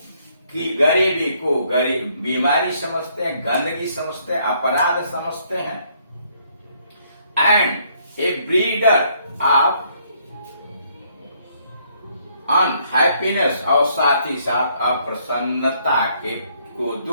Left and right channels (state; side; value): inverted; both; correlation -0.68